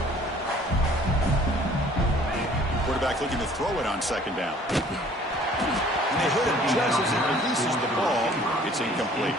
Quarterback looking to throw it on second down. And they hit him just as he releases the ball. It's incomplete.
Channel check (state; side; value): normal; both; correlation 0.54